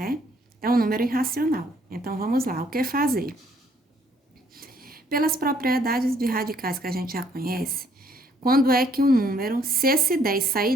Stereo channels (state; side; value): normal; both; correlation 0.65